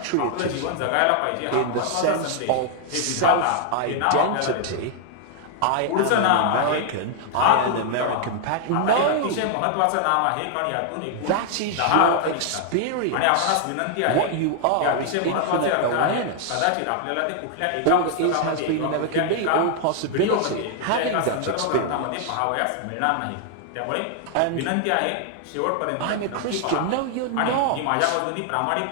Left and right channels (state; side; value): different; both; correlation 0.00